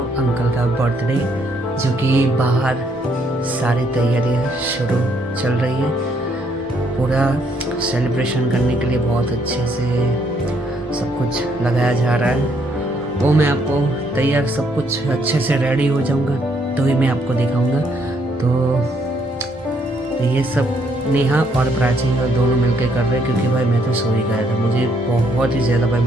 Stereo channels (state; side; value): normal; both; correlation 0.70